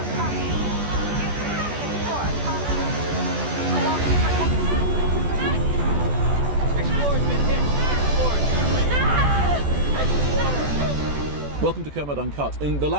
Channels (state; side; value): late; left; 14 ms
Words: Copy. Houston, this is Explorer, copy. Kowalski, Explorer's been hit. Explorer! Welcome to Kermode Uncut. In the